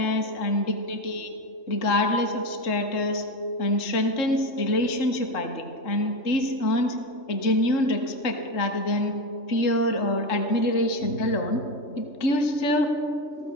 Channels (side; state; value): right; late; 3.7 ms